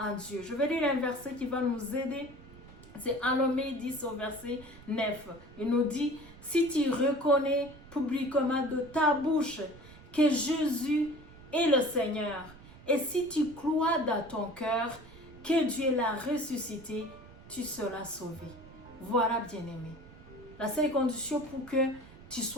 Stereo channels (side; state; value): right; noise; rumble, 19 dB below the sound